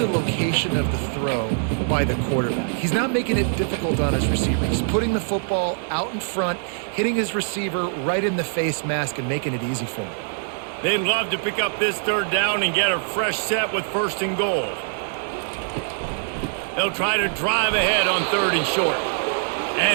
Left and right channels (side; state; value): left; silent; digital silence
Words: location of the throw by the quarterback. He's not making it difficult on his receiver. He's putting the football out in front, hitting his receiver right in the face mask and making it easy for him. They'd love to pick up this third down and get a fresh set with first and goal. They'll try to drive ahead on third and short.